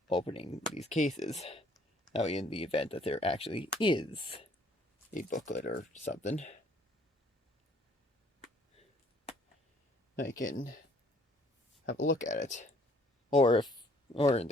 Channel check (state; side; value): normal; both; correlation 0.61